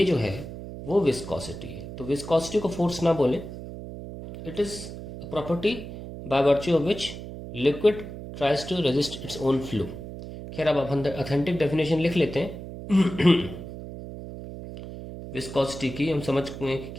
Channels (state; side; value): noise; right; hum, 10 dB below the sound